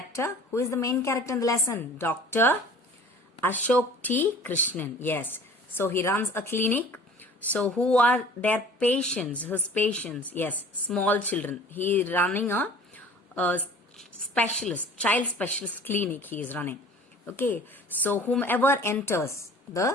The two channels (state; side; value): normal; both; correlation 0.46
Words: Who is the main character in the lesson? Dr. Ashok T. Krishnan. Yes. So he runs a clinic. So who are their patients? His patients. Yes. Small children. He is running a specialist, child specialist clinic he is running. Okay. So whomever enters